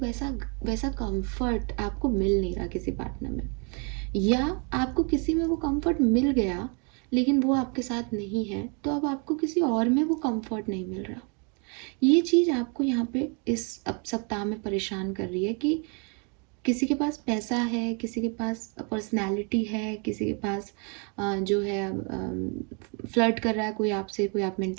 वैसा कंफर्ट आपको मिल नहीं रहा किसी पार्टनर में, या आपको किसी में वो कंफर्ट मिल गया लेकिन वो आपके साथ नहीं है, तो अब आपको किसी और में वो कंफर्ट नहीं मिल रहा। ये चीज़ आपको यहाँ पे इस अब सप्ताह में परेशान कर रही है कि किसी के पास पैसा है, किसी के पास पर्सनैलिटी है, किसी के पास जो है फ्लर्ट कर रहा है कोई आपसे, कोई आप में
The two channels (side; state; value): left; quieter; 35.6 dB